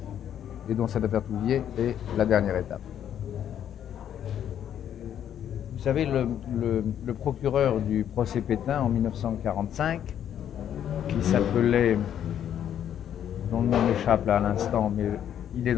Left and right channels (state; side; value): quieter; right; 9.9 dB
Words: et dont cette affaire Touvier est la dernière étape. Vous savez, le procureur du procès Pétain en 1945, qui s'appelait, dont le nom m'échappe là à l'instant, mais il est